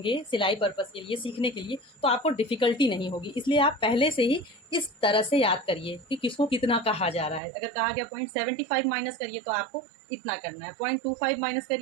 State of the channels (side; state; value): left; drops out; at 7.4 s